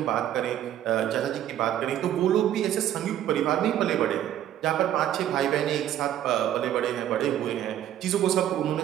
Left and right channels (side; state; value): left; quieter; 11.5 dB